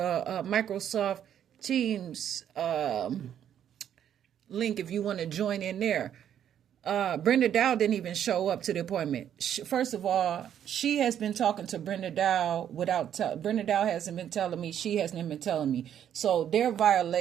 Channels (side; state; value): left; quieter; 9.8 dB